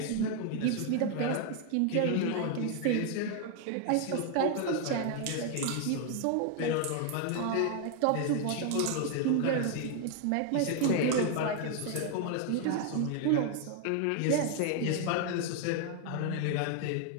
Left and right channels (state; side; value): different; both; correlation 0.00